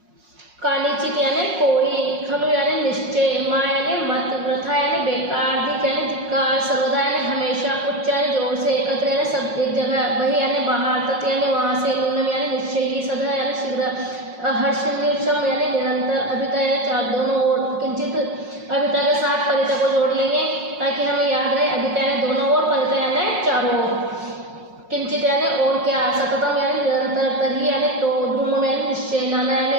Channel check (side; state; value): left; late; 5.5 ms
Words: कानिचित यानी कोई, खलु यानी निश्चय, मा यानी मत, वृथा यानी बेकार, धिक यानी धिक्कार, सर्वदा यानी हमेशा, उच्च यानी जोर से, एकत्र यानी सब एक जगह, बहि यानी बाहर, तत् यानी वहाँ से, न्यूनम यानी निश्चयी, सदा यानी शीघ्र, हर्षम यानी निरंतर, अभिता यानी चार दोनों ओर, किंचित अभिता के साथ परिता को जोड़ लेंगे ताकि हमें याद रहे, अभिता यानी दोनों ओर, परिता यानी चारों ओर, किंचित यानी और क्या, सततम यानी निरंतर, तरी यानी तो, धूम यानी निश्चय, नाना यानी